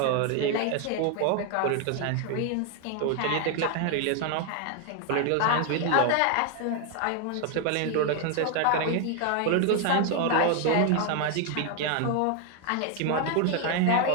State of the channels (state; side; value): different; both; correlation 0.01